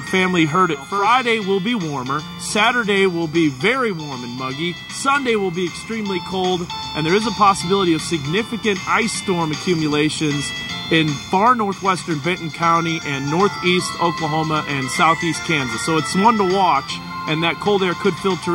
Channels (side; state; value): both; identical; correlation 1.00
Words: family heard it. Friday will be warmer. Saturday will be very warm and muggy. Sunday will be extremely cold, and there is a possibility of significant ice storm accumulations in far northwestern Benton County and northeast Oklahoma and southeast Kansas. So it's one to watch, and that cold air could